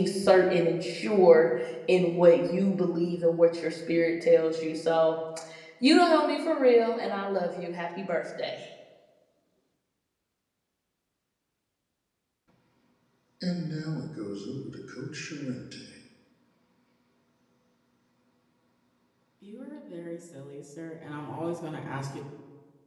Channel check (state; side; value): identical; both; correlation 1.00